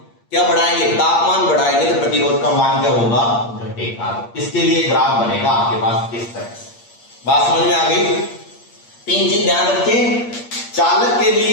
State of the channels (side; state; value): right; late; 8.6 ms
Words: क्या बढ़ाएंगे, तापमान बढ़ाएंगे, तो प्रतिरोध का मान क्या होगा, घटेगा। इसके लिए ग्राफ बनेगा आपके पास इस तरह से। बात समझ में आ गई। 3 चीज ध्यान रखें, चालक के